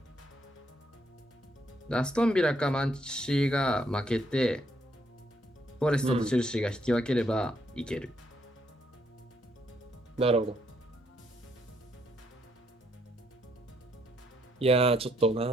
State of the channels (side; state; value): both; normal; correlation 0.73